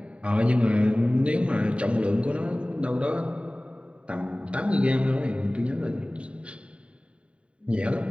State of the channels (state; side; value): late; left; 0.060 ms